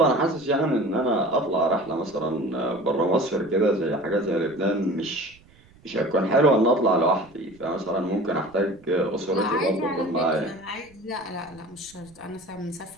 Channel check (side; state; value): right; noise; rumble, 27 dB below the sound